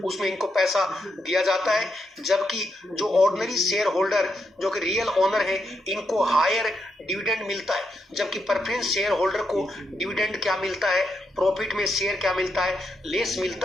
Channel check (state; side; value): normal; both; correlation 0.81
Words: उसमें इनको पैसा दिया जाता है, जबकि जो ऑर्डिनरी शेयर होल्डर जो कि रियल ओनर है इनको हायर डिविडेंड मिलता है। जबकि प्रेफरेंस शेयर होल्डर को डिविडेंड क्या मिलता है, प्रॉफिट में शेयर क्या मिलता है, लेस